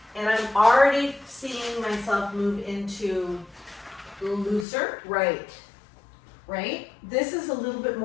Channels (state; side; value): drops out; right; at 4.7 s